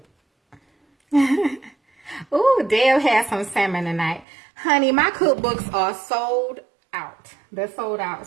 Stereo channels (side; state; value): left; drops out; at 4.2 s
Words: ooh, Dale has some salmon tonight. Honey, my cookbooks are sold out. They're sold out.